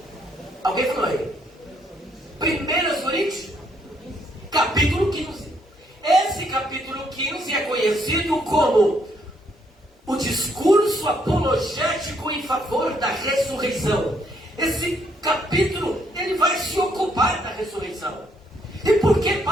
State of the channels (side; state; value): both; normal; correlation 0.71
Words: Alguém falou aí? 1 Coríntios, capítulo 15. Esse capítulo 15 é conhecido como o discurso apologético em favor da ressurreição. Esse capítulo, ele vai se ocupar da ressurreição. E por que